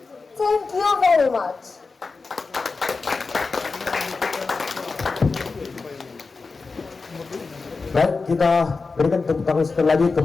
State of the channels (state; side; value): quieter; right; 4.2 dB